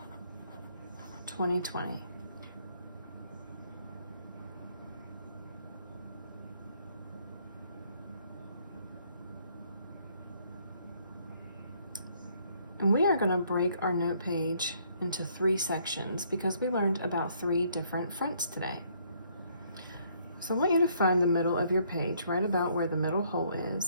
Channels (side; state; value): both; inverted; correlation -0.66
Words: And we are going to break our note page into 3 sections because we learned about 3 different fronts today. So I want you to find the middle of your page, right about where the middle hole